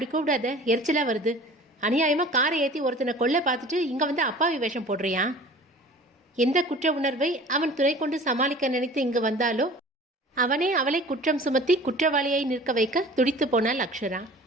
கூப்பிடாத, எரிச்சலா வருது. அநியாயமாக காரை ஏற்றி ஒருத்தனை கொல்ல பார்த்துட்டு இங்கே வந்து அப்பாவி வேஷம் போடுறியா? எந்த குற்ற உணர்வை அவன் துணை கொண்டு சமாளிக்க நினைத்து இங்கு வந்தாலோ அவனே அவளை குற்றம் சுமத்தி குற்றவாளியை நிற்க வைக்க துடித்து போனாள் அக்ஷரா.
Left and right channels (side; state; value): both; normal; correlation 0.44